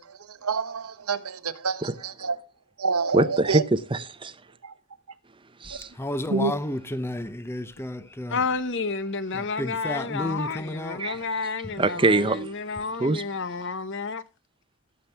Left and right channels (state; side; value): normal; both; correlation 0.13